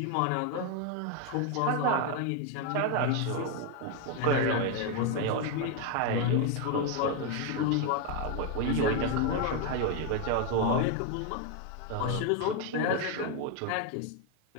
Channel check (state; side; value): different; both; correlation 0.02